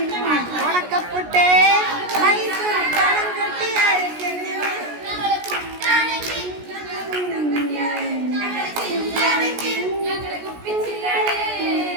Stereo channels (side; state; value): left; late; 17 ms